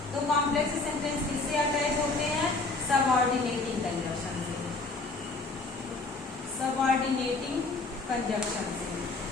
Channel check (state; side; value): quieter; right; 3.6 dB